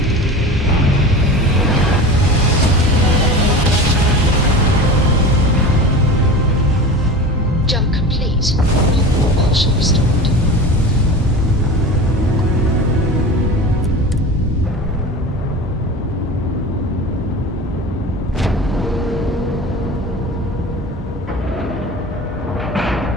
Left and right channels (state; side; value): normal; both; correlation 0.33